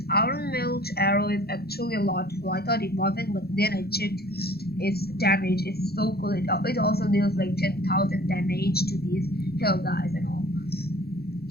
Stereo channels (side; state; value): right; late; 0.46 ms